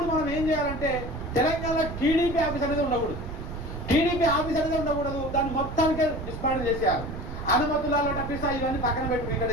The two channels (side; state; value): right; noise; rumble, 8 dB below the sound